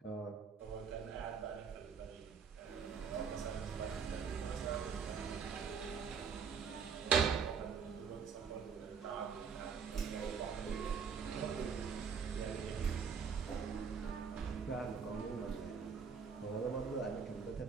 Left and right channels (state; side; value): quieter; left; 6.3 dB